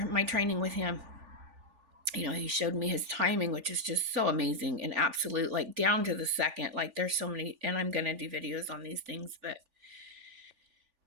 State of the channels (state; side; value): late; left; 3.4 ms